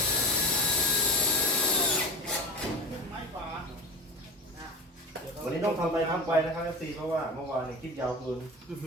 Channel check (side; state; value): both; normal; correlation 0.29